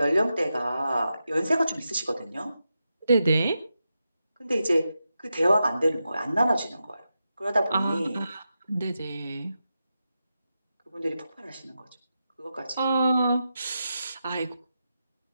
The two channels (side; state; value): both; inverted; correlation -0.89